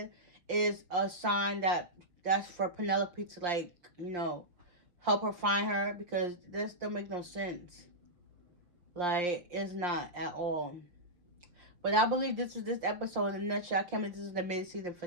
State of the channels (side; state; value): left; late; 5.7 ms